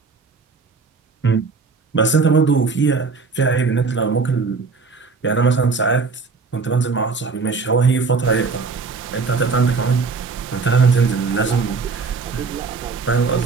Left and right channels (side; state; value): left; quieter; 4.6 dB